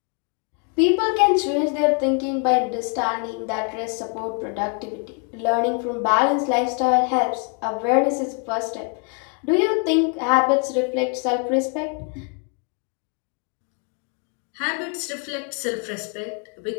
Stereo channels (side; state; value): right; quieter; 39.0 dB